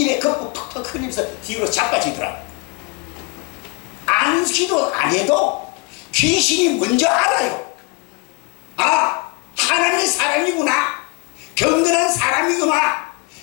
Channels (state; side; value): quieter; right; 28.8 dB